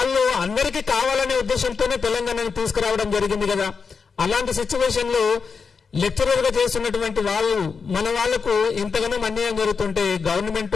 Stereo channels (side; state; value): right; quieter; 5.4 dB